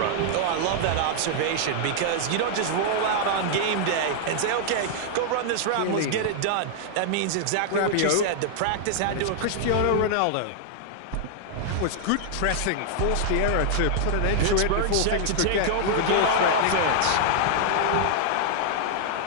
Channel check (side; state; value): both; different; correlation -0.01